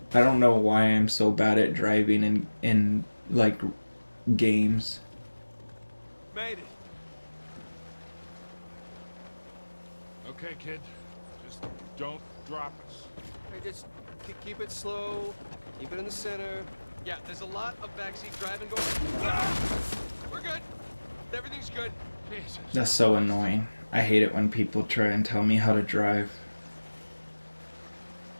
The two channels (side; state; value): both; inverted; correlation -1.00